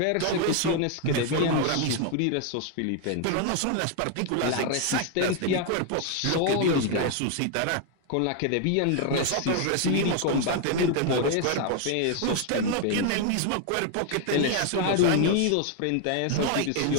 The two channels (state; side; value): different; both; correlation 0.00